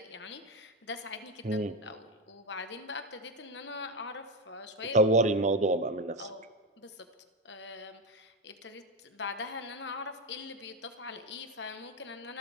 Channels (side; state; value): both; normal; correlation 0.13